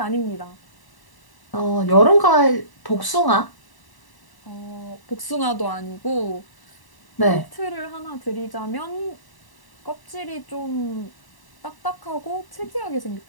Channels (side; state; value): right; late; 1.0 ms